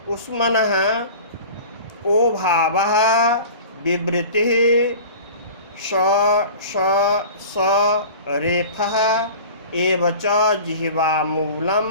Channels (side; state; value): both; inverted; correlation -0.39